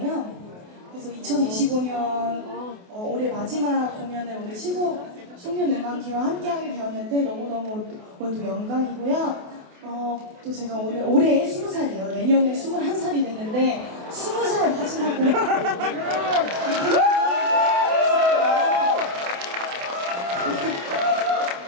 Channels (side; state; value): left; late; 28 ms